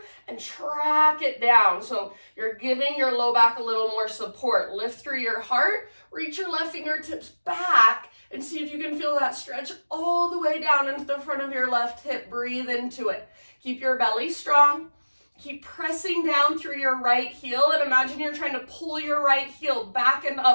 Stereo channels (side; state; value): both; inverted; correlation -1.00